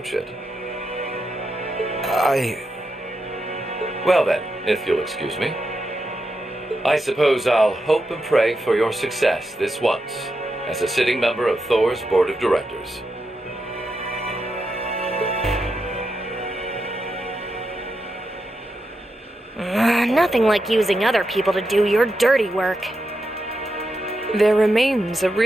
it. Well then, if you'll excuse me. I suppose I'll hope and pray for your success this once, as a sitting member of Thor's Board of Directors. Nothing like using other people to do your dirty work. There remains a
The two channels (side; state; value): both; normal; correlation 0.86